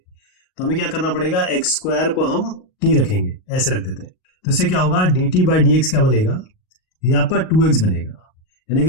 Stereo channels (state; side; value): late; right; 38 ms